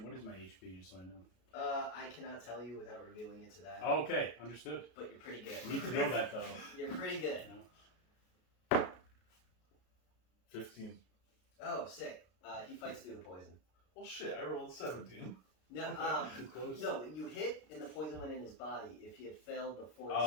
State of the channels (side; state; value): right; late; 33 ms